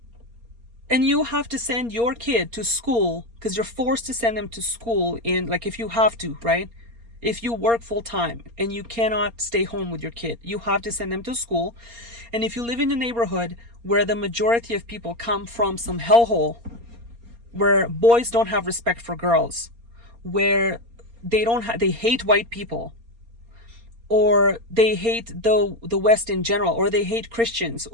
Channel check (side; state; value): left; late; 4.3 ms